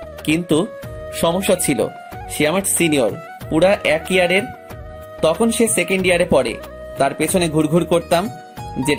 কিন্তু সমস্যা ছিল, সে আমার সিনিয়র পুরা 1 ইয়ারের। তখন সে সেকেন্ড ইয়ারে পড়ে। তার পেছনে ঘুরঘুর করতাম,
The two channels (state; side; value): identical; both; correlation 1.00